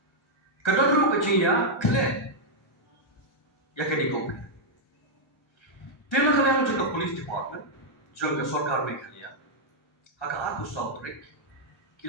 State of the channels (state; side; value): normal; both; correlation -0.04